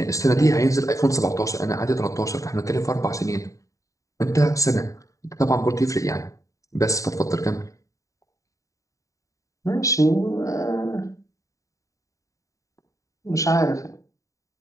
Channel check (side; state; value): right; late; 0.16 ms